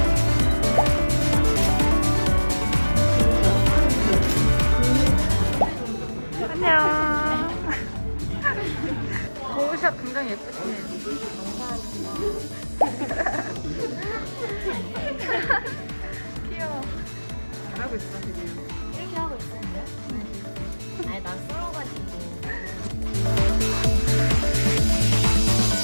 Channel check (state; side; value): inverted; both; correlation -1.00